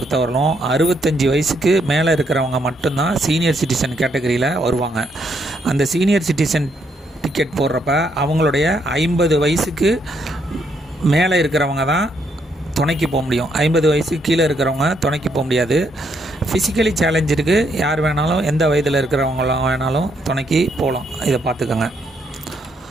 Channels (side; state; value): both; normal; correlation 0.74